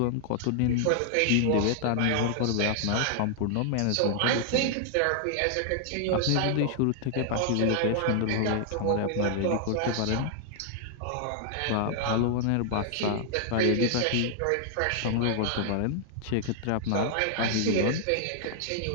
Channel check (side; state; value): both; different; correlation 0.00